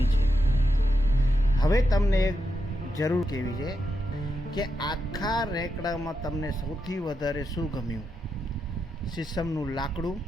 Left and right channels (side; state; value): both; normal; correlation 0.85